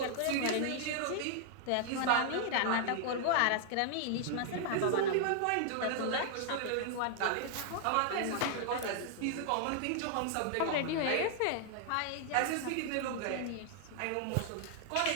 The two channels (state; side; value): different; both; correlation -0.01